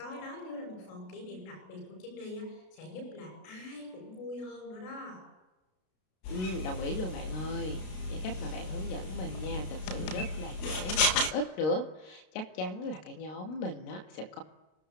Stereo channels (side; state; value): right; late; 32 ms